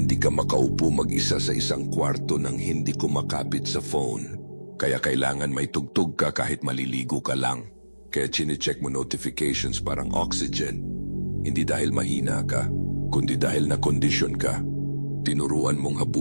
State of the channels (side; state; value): both; inverted; correlation -1.00